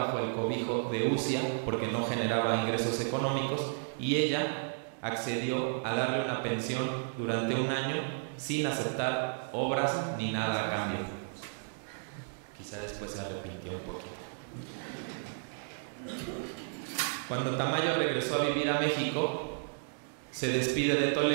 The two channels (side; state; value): left; silent; digital silence